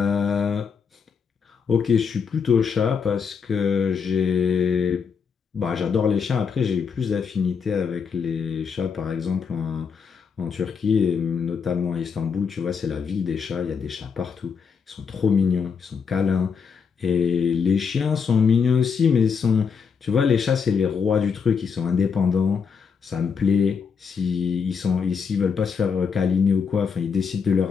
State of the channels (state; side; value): quieter; right; 6.1 dB